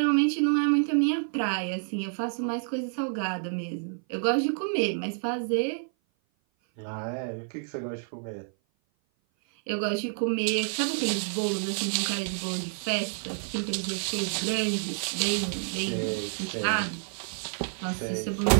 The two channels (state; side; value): silent; left; 56 dB below the other